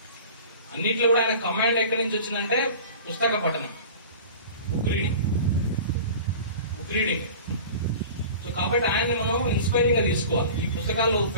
అన్నిట్లో కూడా ఆయన కమాండ్ ఎక్కడి నుంచి వచ్చిందంటే పుస్తక పఠనం, బుక్ రీడింగ్. సో కాబట్టి ఆయన్ని మనం ఇన్స్పైరింగ్ గా తీసుకోవాలి. ఈ పుస్తకాలు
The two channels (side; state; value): both; inverted; correlation -0.39